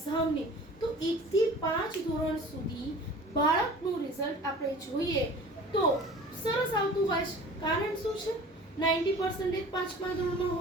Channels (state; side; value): normal; both; correlation 0.43